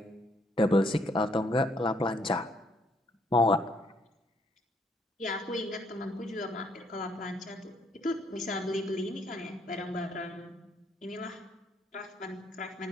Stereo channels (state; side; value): normal; both; correlation 0.68